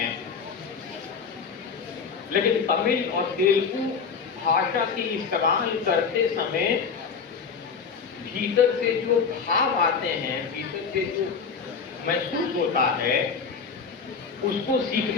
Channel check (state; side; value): quieter; right; 5.7 dB